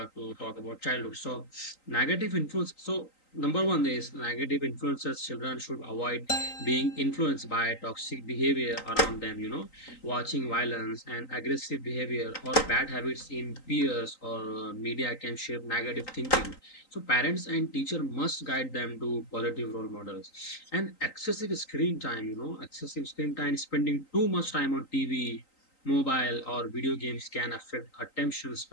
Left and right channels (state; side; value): late; right; 3.9 ms